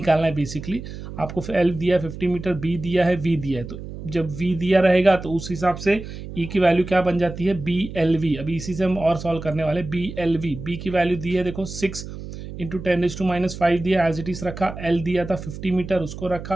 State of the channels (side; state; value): right; noise; hum, 11 dB below the sound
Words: है बेसिकली। आपको L दिया है 50 मीटर, B दिया है, V दिया है, तो जब V दिया रहेगा तो उस हिसाब से E की वैल्यू क्या बन जाती है, BLV। अभी इसी से हम और सॉल्व करने वाले। BLV, B की वैल्यू दी है देखो 6 इंटू 10⁻⁵ दिया, एज इट इज रखा। L दिया था 50 मीटर, उसको